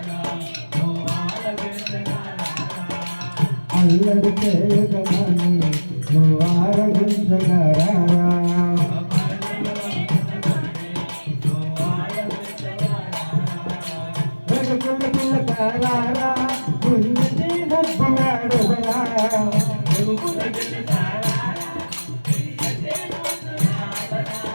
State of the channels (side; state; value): both; inverted; correlation -1.00